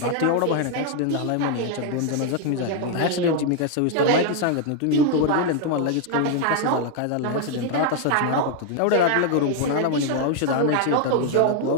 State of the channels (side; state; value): both; different; correlation 0.00